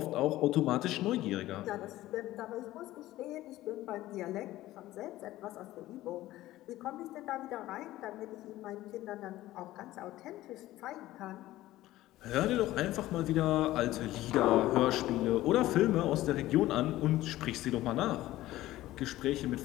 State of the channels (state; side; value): quieter; right; 15.8 dB